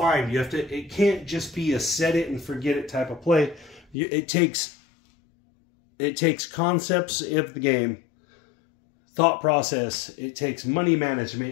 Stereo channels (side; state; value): right; drops out; at 4.0 s